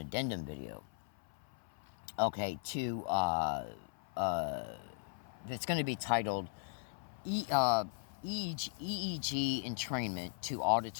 video. Okay, it's going to be titled EEG Entrainment to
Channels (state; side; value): silent; right; 52 dB below the other